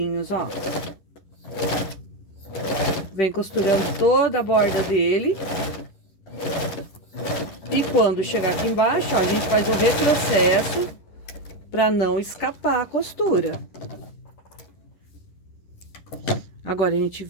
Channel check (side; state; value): right; late; 11 ms